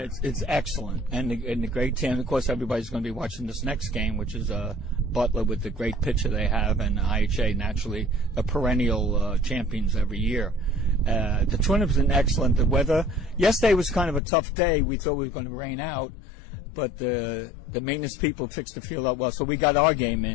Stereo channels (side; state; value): right; drops out; at 14.2 s